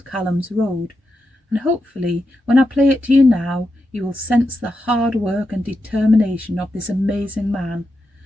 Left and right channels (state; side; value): normal; both; correlation 0.87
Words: Calum's Road, and hopefully when I play it to you now you will sense the hard work and determination of this amazing man,